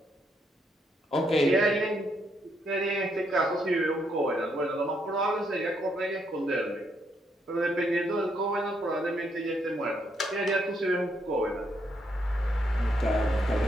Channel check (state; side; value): normal; both; correlation 0.75